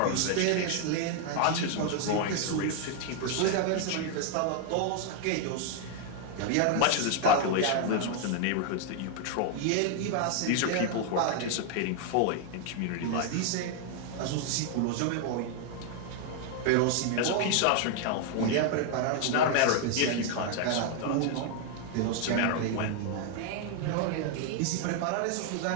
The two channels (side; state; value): both; different; correlation 0.00